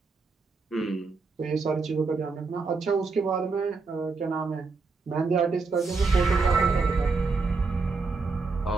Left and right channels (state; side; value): quieter; left; 4.2 dB